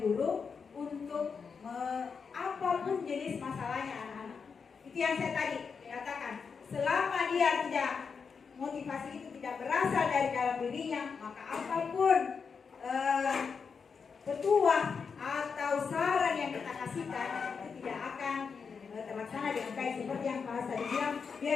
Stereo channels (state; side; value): quieter; right; 5.7 dB